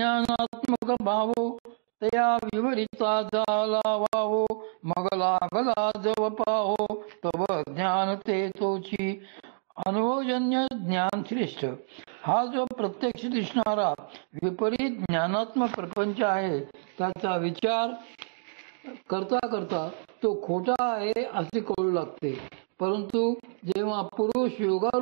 भावो तया विवरिता झाला वावो, मग लागला जव पाहो तव ज्ञान ते तोची. अनुभवजन्य ज्ञान श्रेष्ठ. हा जो प्रत्यक्ष दिसणारा विपरीत ज्ञानात्मक प्रपंच आहे त्याचा विचार करता करता तो खोटा आहे असे कळू लागते. परंतु जेव्हा पुरुष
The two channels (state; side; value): silent; left; digital silence